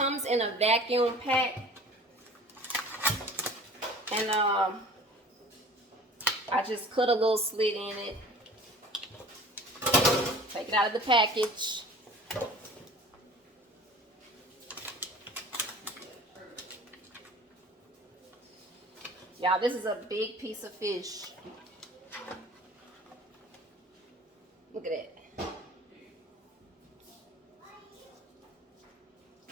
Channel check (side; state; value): both; normal; correlation 0.44